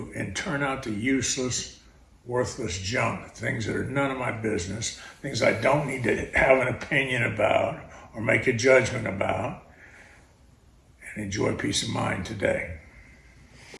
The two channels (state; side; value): identical; both; correlation 1.00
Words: and turn out the useless, worthless junk, things that are none of my business, things I don't need to have an opinion about or make a judgment about, and enjoy peace of mind today.